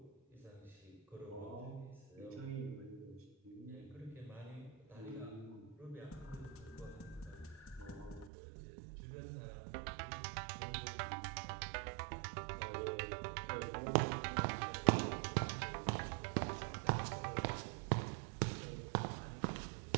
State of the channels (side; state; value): left; drops out; at 8.3 s